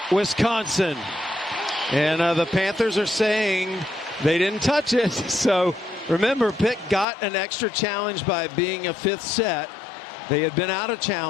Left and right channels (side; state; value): right; drops out; at 7.1 s